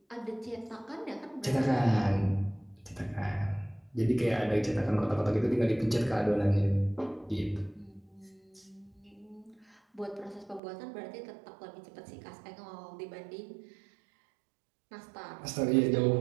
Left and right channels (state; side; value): drops out; left; at 10.6 s